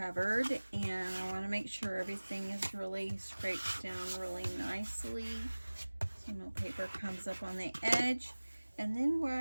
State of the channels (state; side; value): inverted; both; correlation -1.00